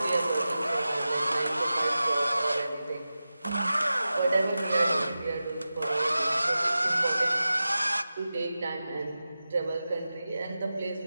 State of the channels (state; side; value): inverted; both; correlation -0.94